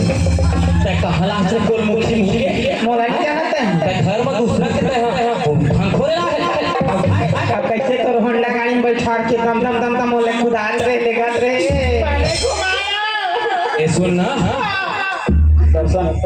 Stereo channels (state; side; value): identical; both; correlation 1.00